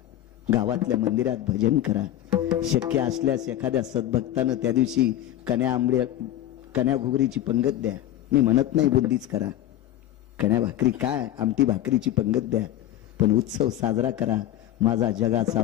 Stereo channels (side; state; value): right; quieter; 12.8 dB